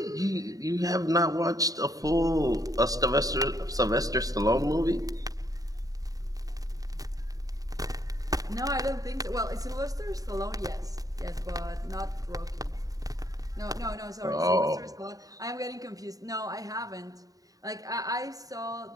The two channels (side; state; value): left; late; 0.17 ms